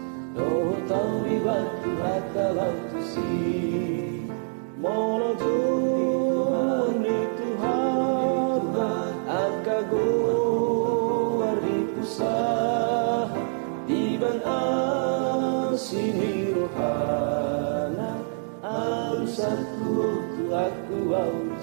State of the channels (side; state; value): left; silent; digital silence